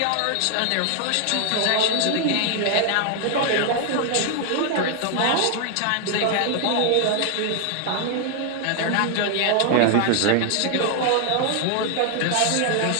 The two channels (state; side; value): different; both; correlation 0.00